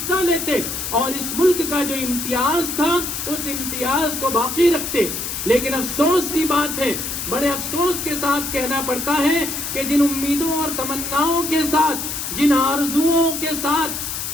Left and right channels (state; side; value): noise; left; hiss, 4 dB below the sound